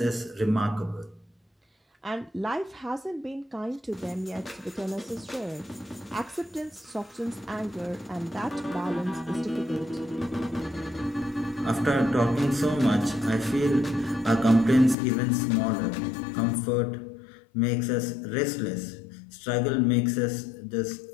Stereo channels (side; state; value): right; drops out; at 15.0 s